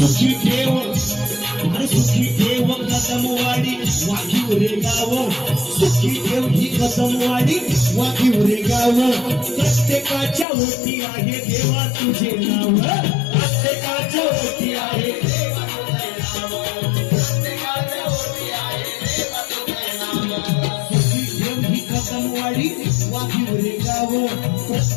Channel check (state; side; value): drops out; right; at 10.5 s